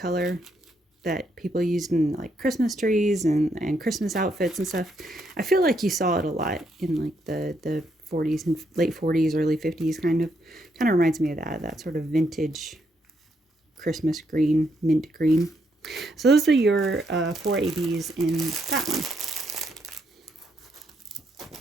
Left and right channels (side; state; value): both; normal; correlation 0.76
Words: that people used in like Christmas trees and Christmas outfits and stuff. I feel like you saw it a lot in like the 40s and late 40s, early 50s kind of reminds me of that sort of vintage Christmas green, mint green. So those are your 4 ABs in that one.